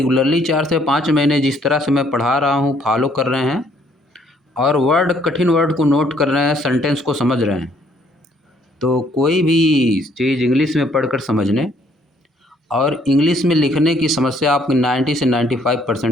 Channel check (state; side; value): normal; both; correlation 0.65